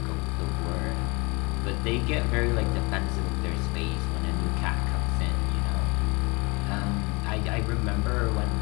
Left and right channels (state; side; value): quieter; right; 27.9 dB